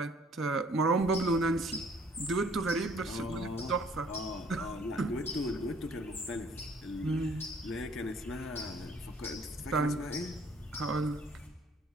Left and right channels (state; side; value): normal; both; correlation 0.58